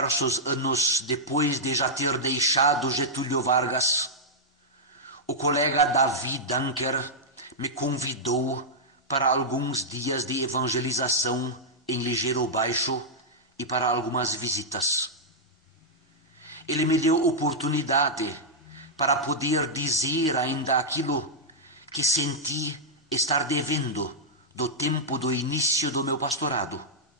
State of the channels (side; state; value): both; normal; correlation -0.08